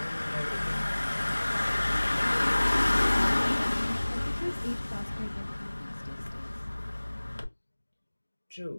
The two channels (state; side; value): inverted; both; correlation -1.00